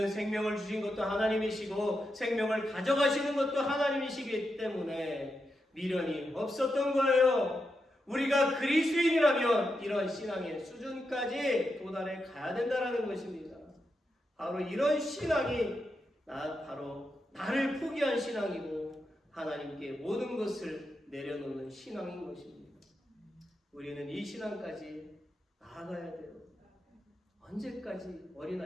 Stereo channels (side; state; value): both; normal; correlation 0.86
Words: 생명을 주신 것도 하나님이시고 생명을 가져가시는 것도 하나님이시기 때문에 미련이 없었던 거예요. 우리가 그리스도인이라면 이런 신앙의 수준까지 도달해 가야 된다는 것입니다. 바로 이런 신앙이 바로 나를 포기한 신앙이고 하나님께 모든 것을 내려놓는 신앙인 것입니다. 우리는 이 신앙까지 나아가야 돼요. 언제까지